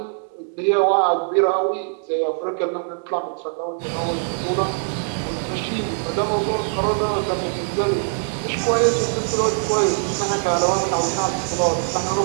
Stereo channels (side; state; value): left; silent; digital silence